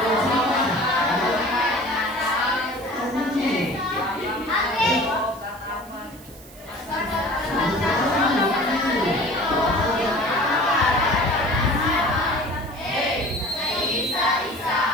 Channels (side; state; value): right; noise; hiss, 22 dB below the sound